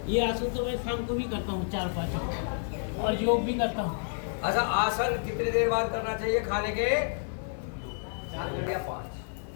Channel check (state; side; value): silent; right; 58 dB below the other